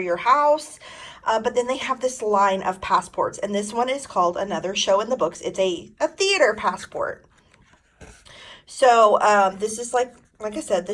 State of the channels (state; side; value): identical; both; correlation 1.00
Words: house. But then they have this line of passports, and this one is called Another Show in the Books. It's a theater passport. So this is like I said, the